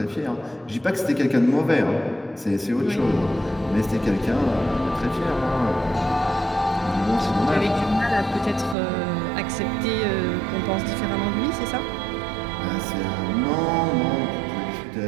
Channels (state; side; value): drops out; left; at 8.8 s